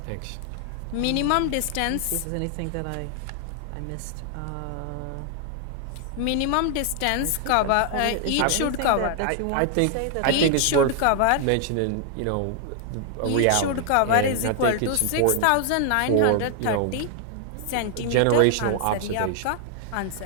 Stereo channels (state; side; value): different; both; correlation 0.00